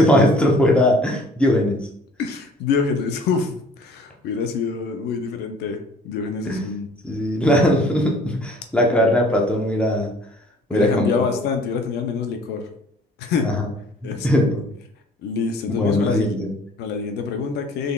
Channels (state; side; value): normal; both; correlation 0.53